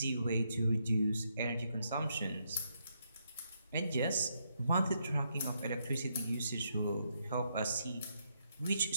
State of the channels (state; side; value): inverted; both; correlation -0.78